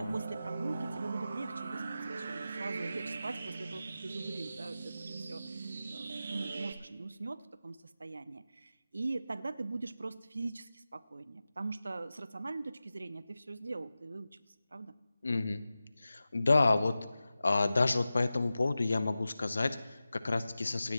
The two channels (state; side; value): inverted; both; correlation -0.94